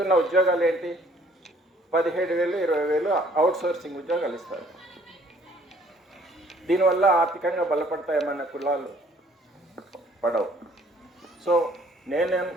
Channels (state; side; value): normal; both; correlation 0.59